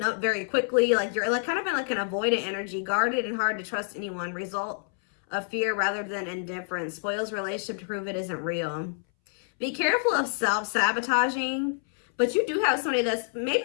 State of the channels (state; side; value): silent; right; 60 dB below the other